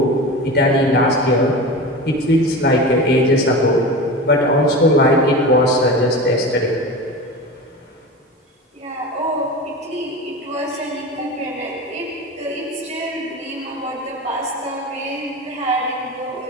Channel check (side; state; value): both; normal; correlation 0.29